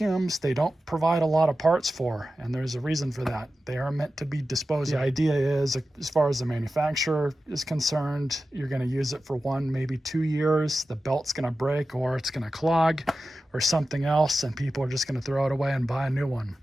they don't provide a lot of parts for, and there's a reason for that. They are meant to be disposed of. The idea is, as far as the manufacturer is concerned, you're going to use it for 1, maybe 2 years. The belt's going to break, or it's going to clog, or something else, and people are just going to throw it away and buy a new one.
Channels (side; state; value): both; normal; correlation 0.93